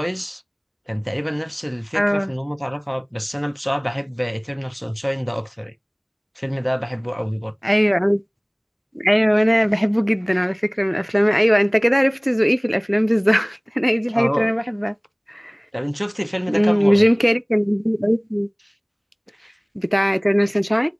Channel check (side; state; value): both; identical; correlation 1.00